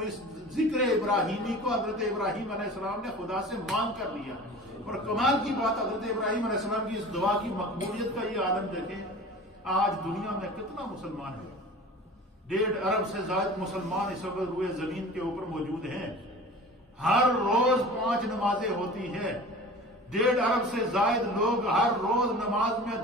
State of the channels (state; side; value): normal; both; correlation 0.39